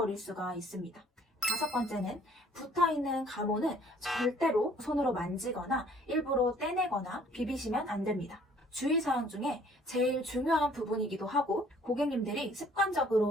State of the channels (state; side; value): normal; both; correlation 0.58